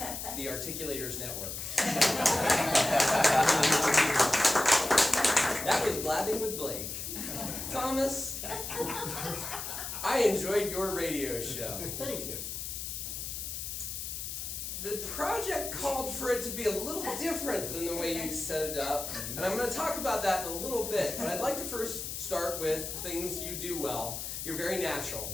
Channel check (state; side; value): noise; left; hiss, 6 dB below the sound